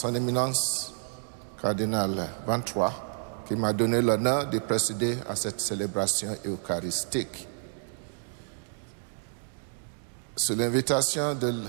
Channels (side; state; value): left; silent; digital silence